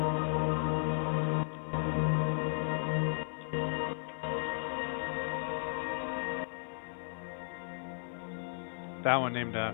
That one named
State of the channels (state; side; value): silent; right; digital silence